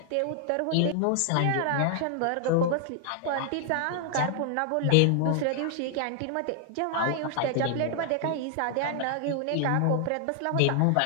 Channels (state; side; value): different; both; correlation 0.00